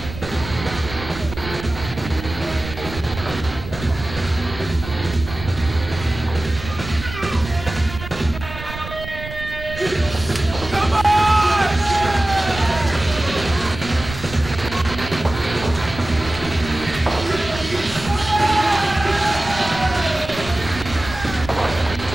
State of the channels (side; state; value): right; noise; rumble, 11 dB below the sound